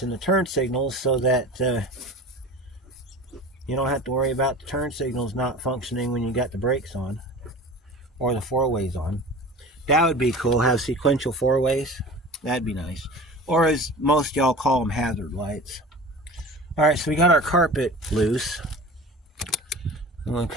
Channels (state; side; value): normal; both; correlation 0.37